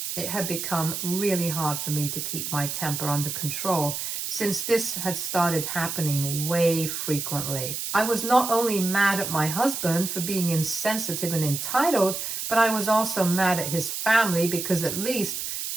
it had become really hard for me to keep my temper under control, since this had started happening way frequently. I was not only mad at my husband for being insensitive and entitled, but I was also mad at his family because at least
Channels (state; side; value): noise; right; hiss, 4 dB below the sound